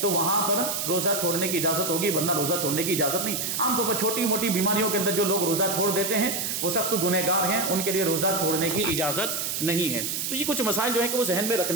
تو وہاں پر روزہ چھوڑنے کی اجازت ہوگی، ورنہ روزہ چھوڑنے کی اجازت نہیں. عام طور پر چھوٹی موٹی بیماریوں کے اندر جو لوگ روزہ چھوڑ دیتے ہیں وہ سخت گنہگار ہیں، ان کے لیے روزہ چھوڑنے کی اجازت نہیں ہے. تو یہ کچھ مسائل جو ہیں کہ وہ ذہن میں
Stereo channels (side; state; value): right; noise; hiss, 2 dB below the sound